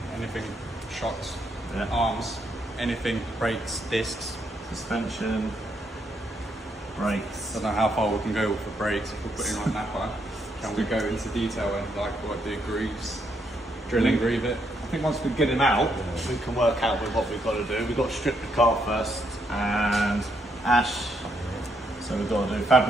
Anything, shocks, Yeah. arms, anything, brakes, discs. Suspension. Brakes. I don't know how far we can go with the brakes if we're putting on Napa. Can we go into detail and like what do grooves, drill and groove it? I think once we get him out, we can work out with what we've got to do. We've got to strip the car first and ash. So we've got to do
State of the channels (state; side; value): normal; both; correlation 0.76